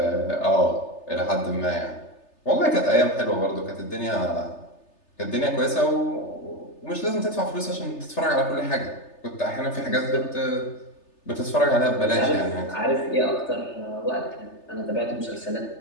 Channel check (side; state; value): right; late; 3.3 ms